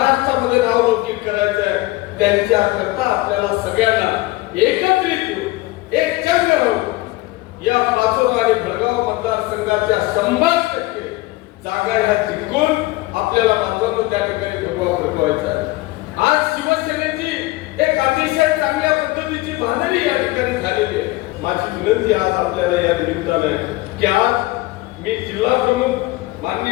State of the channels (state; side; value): quieter; right; 19.9 dB